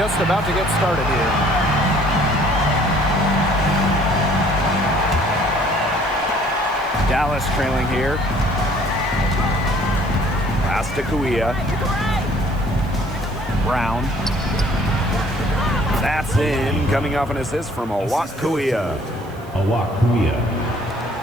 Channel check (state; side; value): noise; right; hiss, 26 dB below the sound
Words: about to get started here. Dallas trailing here. Pass to Kuia. Brown. That's in, coming off an assist from Awak Kuia.